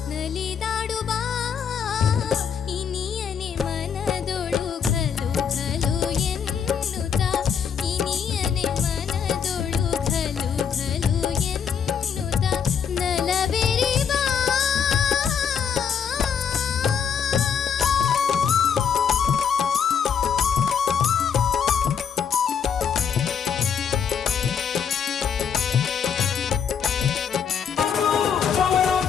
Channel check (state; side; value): quieter; right; 7.3 dB